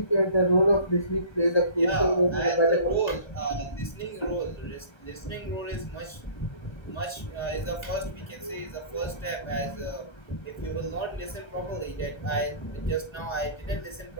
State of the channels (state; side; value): late; right; 1.3 ms